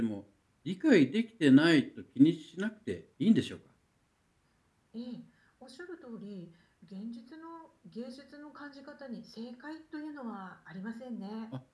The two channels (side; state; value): both; identical; correlation 1.00